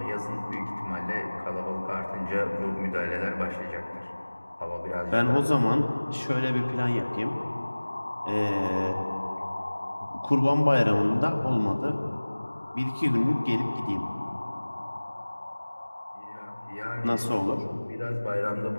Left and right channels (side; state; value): both; inverted; correlation -1.00